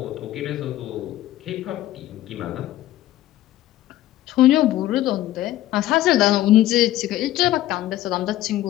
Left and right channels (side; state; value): right; quieter; 14.5 dB